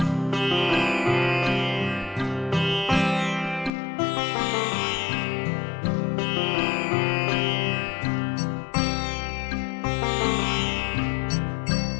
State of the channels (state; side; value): drops out; right; at 3.7 s